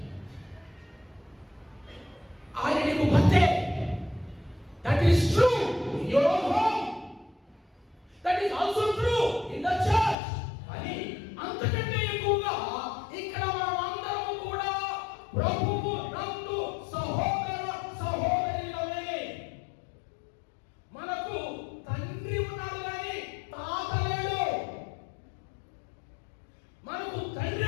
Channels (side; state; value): right; drops out; at 10.2 s